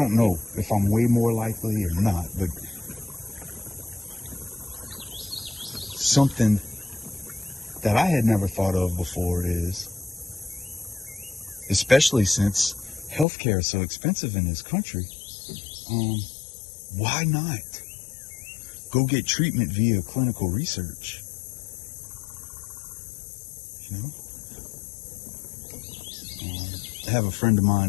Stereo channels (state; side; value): drops out; right; at 13.2 s